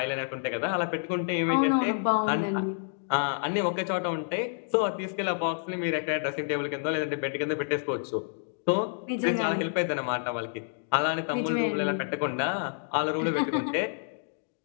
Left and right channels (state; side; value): silent; right; digital silence